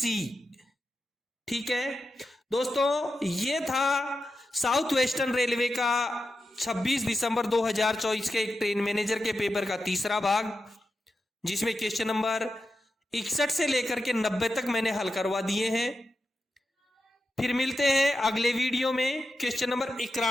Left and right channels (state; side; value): normal; both; correlation 0.89